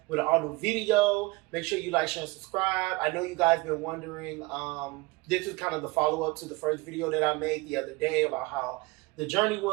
with an all new video. Make sure you like, share, and subscribe. I know you guys been wondering. This is kind of the follow up to the first video that I made the other day about how the journey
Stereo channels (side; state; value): left; quieter; 23.0 dB